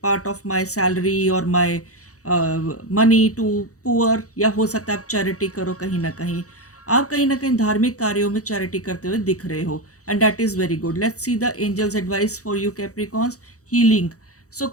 part of my salary और माय मनी टू पुअर, या हो सकता है आप चैरिटी करो कहीं न कहीं। आप कहीं न कहीं धार्मिक कार्यों में चैरिटी करते हुए दिख रहे हो and that is very good. Let's see the angels advice for you Capricorns. Healing. So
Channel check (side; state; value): right; late; 0.66 ms